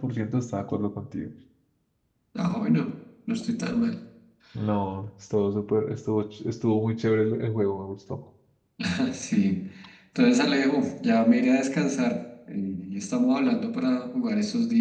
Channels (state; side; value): identical; both; correlation 1.00